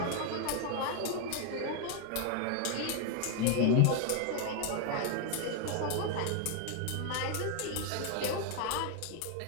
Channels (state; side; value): different; both; correlation 0.00